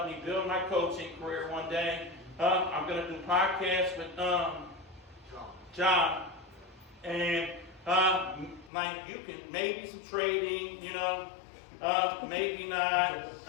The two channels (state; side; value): drops out; right; at 8.7 s